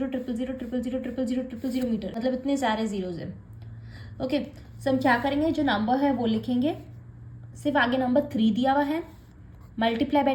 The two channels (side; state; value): both; identical; correlation 1.00